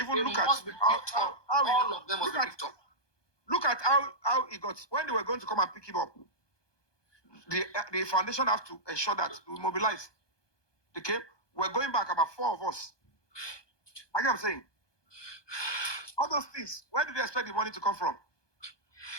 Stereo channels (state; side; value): late; right; 1.2 ms